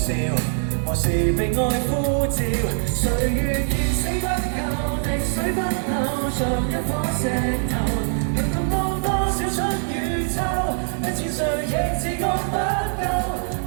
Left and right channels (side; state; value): left; silent; digital silence